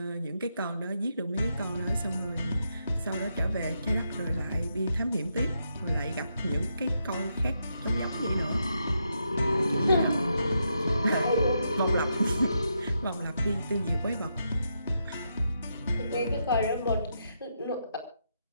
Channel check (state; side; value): inverted; both; correlation -0.82